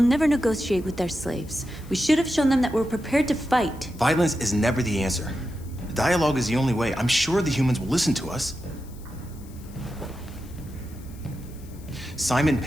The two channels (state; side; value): noise; left; hiss, 24 dB below the sound